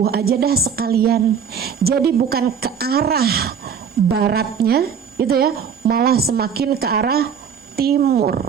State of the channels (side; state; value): left; quieter; 7.2 dB